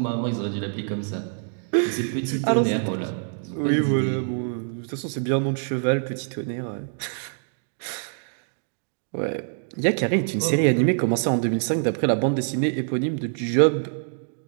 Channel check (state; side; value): silent; left; digital silence